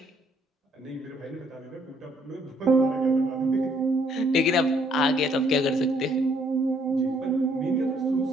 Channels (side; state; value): both; normal; correlation 0.66